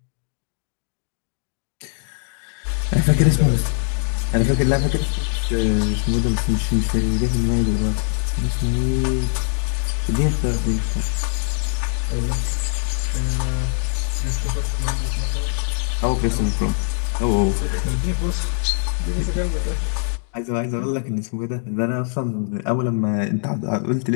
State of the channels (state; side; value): silent; right; digital silence